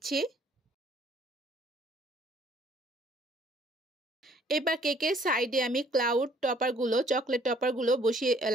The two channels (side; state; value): both; normal; correlation 0.60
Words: এবার কেকের সাইডে আমি চকলেট টপারগুলো